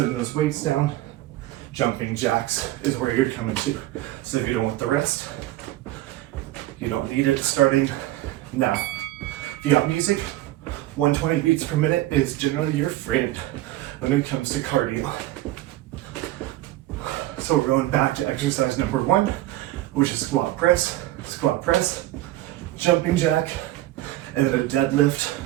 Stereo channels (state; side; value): quieter; left; 15.8 dB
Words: those weights down. Jumping jacks is where you're coming to. So if you don't want the rest, you don't need it, starting now. If you got music, 120 beats per minute is generally your friend when it comes to cardio. So we're going back to exercise number 1, which is squat press, jumping jack, and then a deadlift